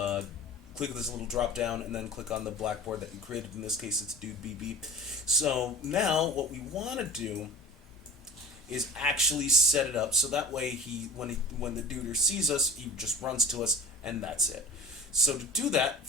this little drop down and then click on the Blackboard that you created. In this case, it's Dude BB. So now what we want to do is actually set it up so that way when the duder sees us, he just runs to us and that's it. So to do that,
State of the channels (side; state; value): both; normal; correlation 0.38